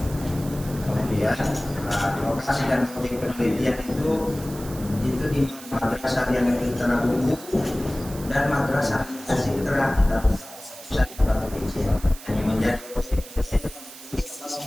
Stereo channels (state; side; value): noise; right; hiss, 16 dB below the sound